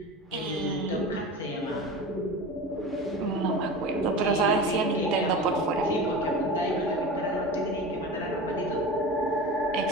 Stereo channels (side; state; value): both; normal; correlation 0.31